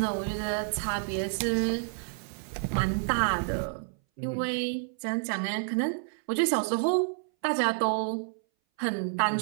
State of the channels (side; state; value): left; silent; 58 dB below the other